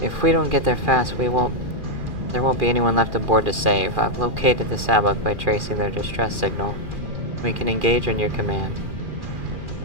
If we don't get there fast, there won't be anyone left aboard to save. I've located the Sabak by tracing their distress signal. We can engage on your command.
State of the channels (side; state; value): left; late; 2.4 ms